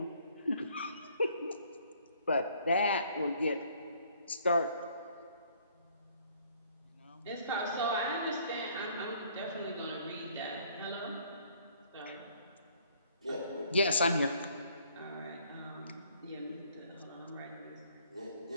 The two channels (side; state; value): both; inverted; correlation -0.61